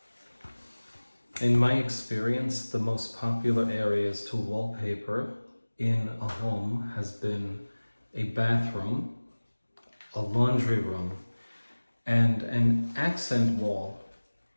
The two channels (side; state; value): both; inverted; correlation -1.00